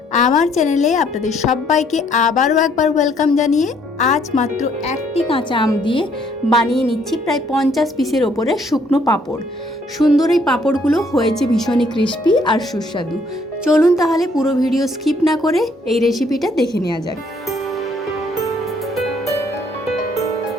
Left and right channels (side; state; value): both; normal; correlation 0.66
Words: আমার চ্যানেলে আপনাদের সবাইকে আবারও একবার ওয়েলকাম জানিয়ে আজ মাত্র একটি কাঁচা আম দিয়ে বানিয়ে নিচ্ছি প্রায় 50 পিসের ওপরে শুকনো পাঁপড়। সুন্দর এই পাঁপড়গুলো হয়েছে ভীষণই ক্রিস্পি আর সুস্বাদু। চলুন তাহলে পুরো ভিডিও স্কিপ না করে এই রেসিপিটা দেখে নেওয়া যাক।